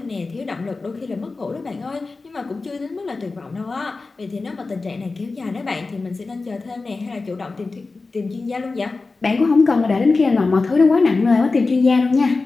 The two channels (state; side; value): quieter; right; 3.8 dB